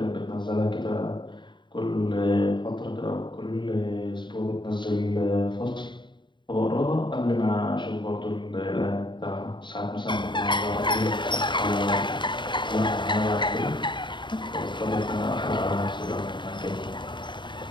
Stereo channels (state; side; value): late; right; 0.23 ms